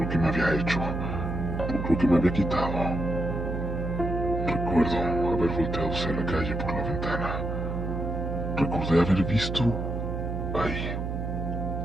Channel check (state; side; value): noise; right; hum, 3 dB below the sound